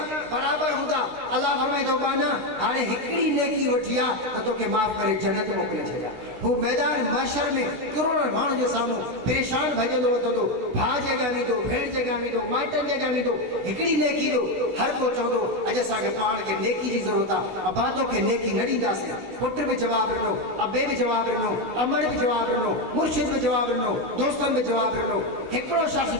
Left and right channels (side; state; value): left; late; 16 ms